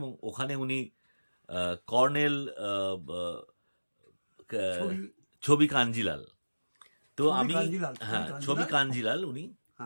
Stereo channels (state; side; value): inverted; both; correlation -1.00